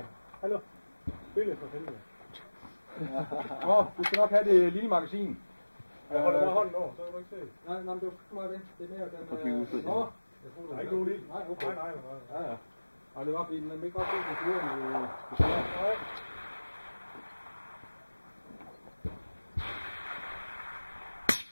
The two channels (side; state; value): both; inverted; correlation -1.00